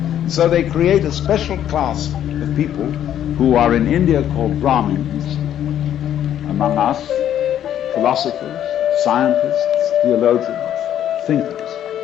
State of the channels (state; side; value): quieter; right; 10.7 dB